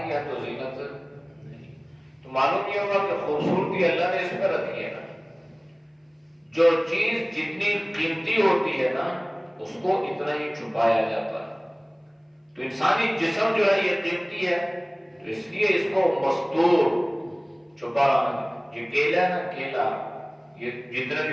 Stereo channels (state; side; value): identical; both; correlation 1.00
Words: ہے تو زینت نہیں. تو معلوم یہ ہوگا کہ خوبصورتی اللہ نے اس میں رکھی ہے نا. جو چیز جتنی قیمتی ہوتی ہے نا اس کو اتنا ہی چھپایا جاتا ہے. تو انسانی جسم جو ہے یہ قیمتی ہے، تو اس لیے اس کو مستور چھپا رہنا. یہ کیلا ہے نا، کیلا، یہ جتنے